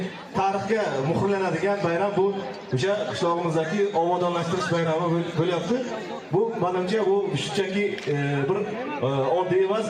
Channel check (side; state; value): both; identical; correlation 1.00